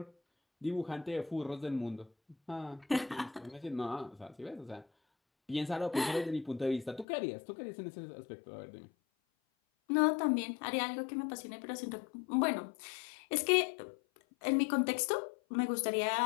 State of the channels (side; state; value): right; drops out; at 7.1 s